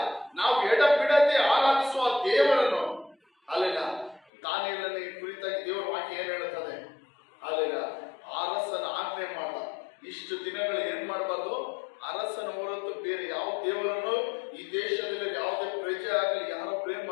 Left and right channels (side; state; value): right; drops out; at 4.2 s